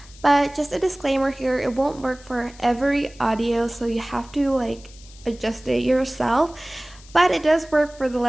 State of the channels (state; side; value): noise; left; hiss, 23 dB below the sound